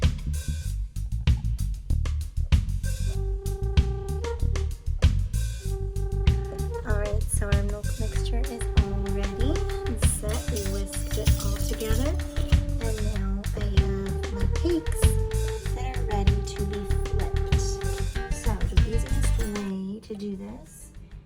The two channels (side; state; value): both; identical; correlation 1.00